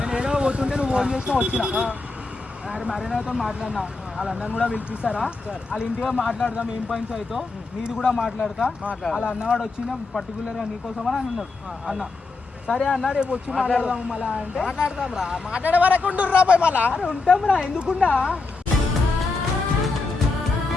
ఏదో పోతుంటే నువ్వు ఫోన్ చేసినా వచ్చిన మరేనాతో మాట్లాడినా. వాళ్ళ అన్నను కూడా పిలిపిస్తారా? వాళ్ళ ఇంటిగా మాట్లాడదాం, ఏం పాయింట్స్ అయితే నీది కూడా మాట్లాడతా. వాళ్ళ అన్నవాడు వచ్చిన పర్టికులర్ గా నీకోసం అని అన్నాడు అన్న. సరే అన్న రేపు వచ్చి మాట్లాడదాము మళ్ళా అంటే మాట్లాడదాం రా. మాట్లాడే వరకు ఉంటుర్రా పోయి మళ్ళా. అరే ఉంటాం రా, ఎందుకుండా.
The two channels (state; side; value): quieter; right; 3.7 dB